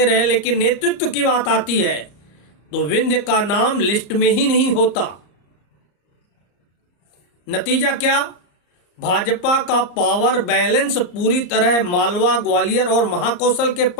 रहे, लेकिन नेतृत्व की बात आती है तो विंध्य का नाम लिस्ट में ही नहीं होता। नतीजा क्या? भाजपा का पावर बैलेंस पूरी तरह मालवा, ग्वालियर और महाकौशल के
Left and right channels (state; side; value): late; right; 34 ms